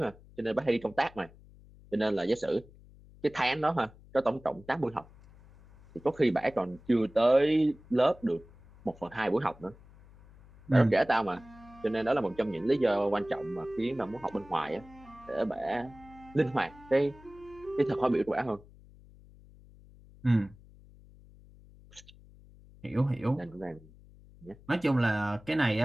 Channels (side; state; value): left; noise; hum, 23 dB below the sound